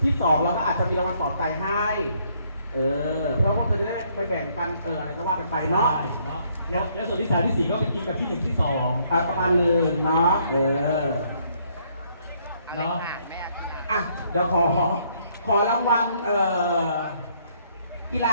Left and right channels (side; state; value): both; inverted; correlation -0.68